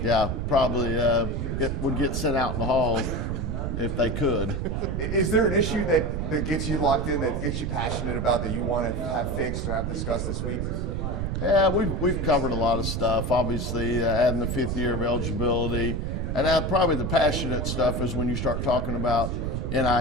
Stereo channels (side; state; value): right; noise; rumble, 2 dB below the sound